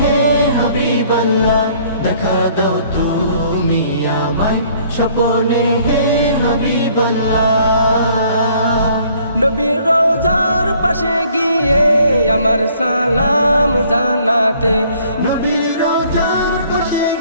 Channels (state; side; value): inverted; both; correlation -0.59